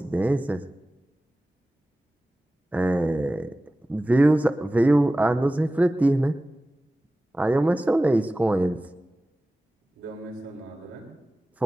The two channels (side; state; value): both; normal; correlation 0.97